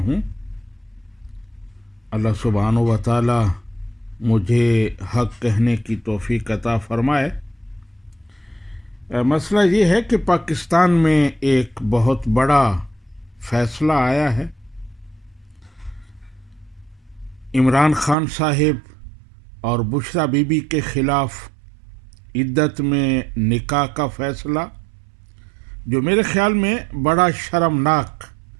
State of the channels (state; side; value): drops out; left; at 18.2 s